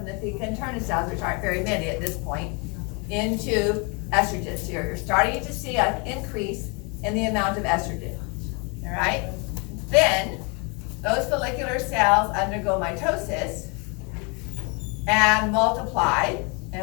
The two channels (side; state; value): right; quieter; 32.2 dB